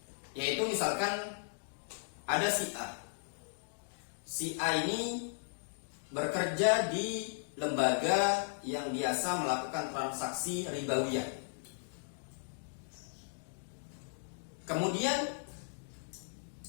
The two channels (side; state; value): right; silent; digital silence